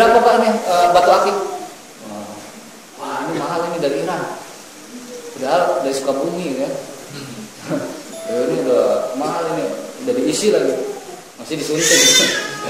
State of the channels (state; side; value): identical; both; correlation 1.00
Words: Pak ini batu akik? Wah ini mahal, ini dari Iran, padahal dari Sukabumi ya. Ini udah mahal, ini udah diisi lagi, masih disuntik.